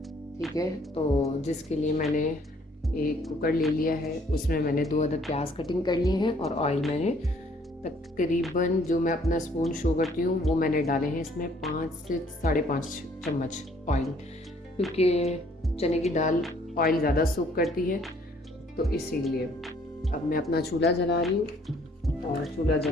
ठीक है, तो जिसके लिए मैंने एक कुकर ले लिया है, उसमें मैंने 2 अदद प्याज कटिंग कर लिए हैं और ऑयल मैंने तकरीबन जो मैं अपना स्पून शो करती हूँ वो मैंने डाले हैं इसमें 5 से 5.5 चम्मच ऑयल, क्योंकि चने की दाल ऑयल ज़्यादा सूख करती है, तो इसीलिए। अब मैं अपना चूल्हा जला रही हूँ और चूल्हा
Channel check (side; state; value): both; normal; correlation 0.62